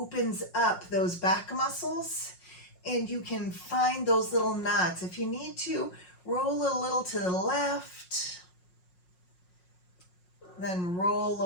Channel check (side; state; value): right; late; 5.5 ms